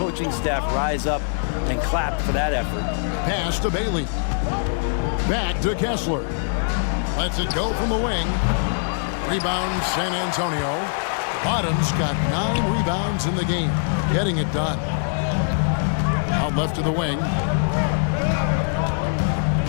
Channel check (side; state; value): right; silent; digital silence